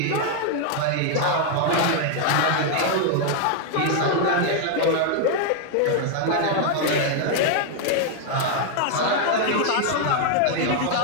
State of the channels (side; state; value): both; different; correlation 0.00